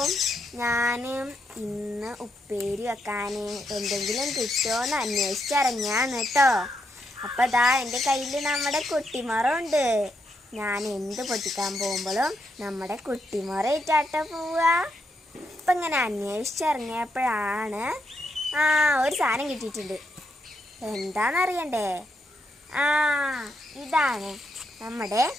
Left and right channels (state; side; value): normal; both; correlation 0.80